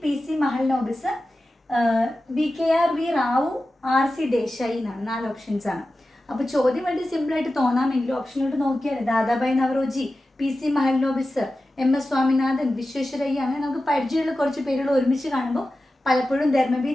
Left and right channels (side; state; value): both; normal; correlation 0.94